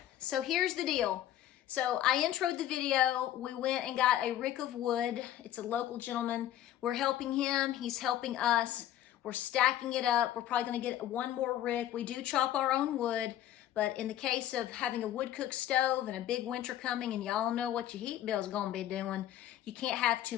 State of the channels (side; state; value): right; quieter; 12.3 dB